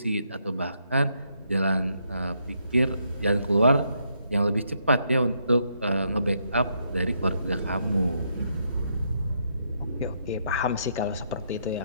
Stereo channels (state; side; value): inverted; both; correlation -0.76